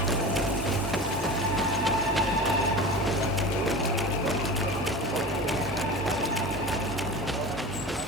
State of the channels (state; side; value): normal; both; correlation 0.32